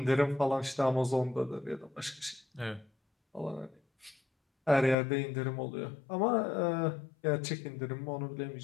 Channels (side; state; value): right; drops out; at 5.0 s